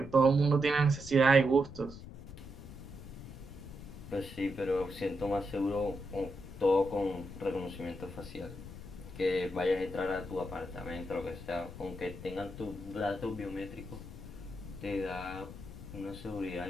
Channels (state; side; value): noise; left; rumble, 13 dB below the sound